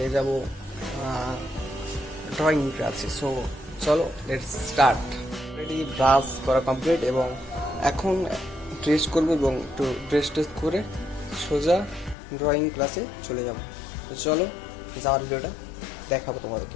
যাব ড্রয়িং ক্লাসে। সো চলো লেটস স্টার্ট। অলরেডি ব্রাশ করা কমপ্লিট এবং এখন ড্রেস করবো এবং একটু ড্রেস টেস্ট করে সোজা ড্রয়িং ক্লাসে চলে যাব। তো চলো যাওয়ার ভিডিওটা দেখাবো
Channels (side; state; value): right; drops out; at 12.2 s